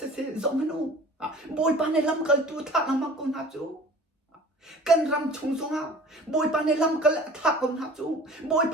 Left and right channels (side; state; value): both; normal; correlation 0.44